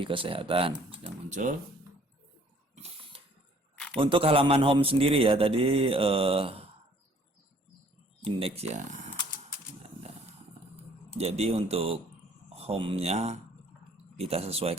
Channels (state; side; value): normal; both; correlation 0.58